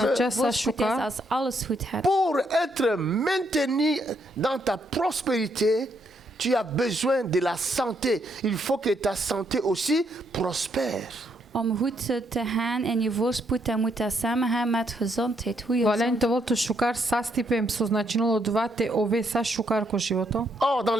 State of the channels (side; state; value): both; normal; correlation 0.74